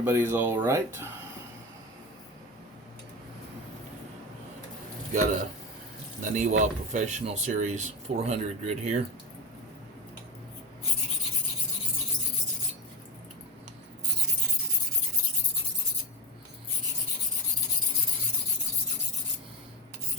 all right. Got a Naniwa Professional Series 400 grit here.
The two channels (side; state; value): both; normal; correlation 0.17